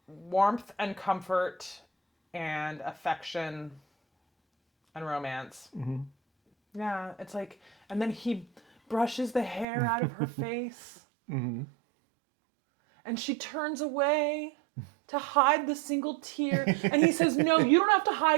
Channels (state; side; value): drops out; left; at 9.7 s